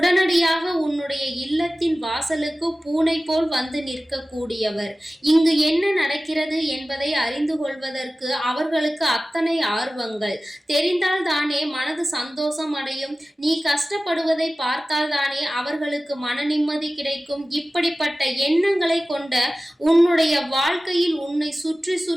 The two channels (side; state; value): both; normal; correlation 0.96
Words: உன்னுடைய இல்லத்தின் வாசலுக்கு பூனை போல் வந்து நிற்கக்கூடியவர். இங்கு என்ன நடக்கிறது என்பதை அறிந்து கொள்வதற்கு அவர்களுக்கு அத்தனை ஆர்வங்கள். தெரிந்தால் தானே மனது சந்தோஷம் அடையும். நீ கஷ்டப்படுவதை பார்த்தால் தானே அவர்களுக்கு மன நிம்மதி கிடைக்கும். இப்படிப்பட்ட எண்ணங்களை கொண்ட உன்னுடைய வாழ்க்கையில் உன்னை சுற்றி